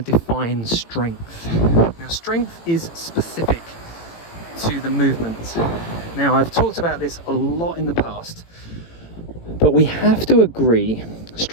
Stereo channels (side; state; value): right; late; 18 ms